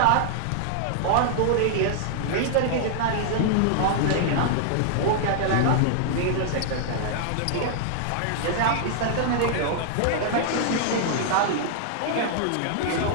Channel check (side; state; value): both; different; correlation -0.01